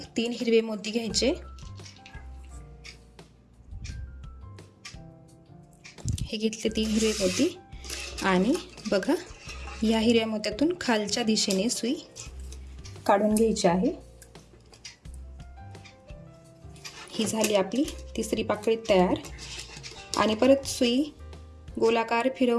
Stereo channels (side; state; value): both; identical; correlation 1.00